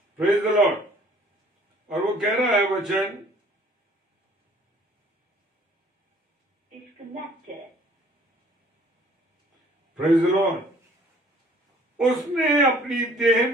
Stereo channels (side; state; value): both; normal; correlation 0.56